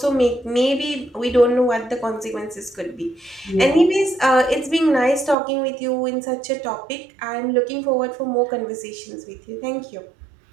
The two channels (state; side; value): drops out; left; at 5.4 s